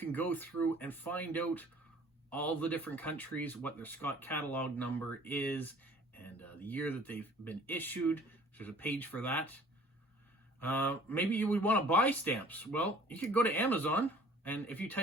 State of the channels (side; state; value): both; normal; correlation 0.52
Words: go through and find out all the different countries, what their Scott catalog number is, and the year that they've been issued. There's a page for that. Maybe you would want to buy stamps. Well, you could go to Amazon, and if you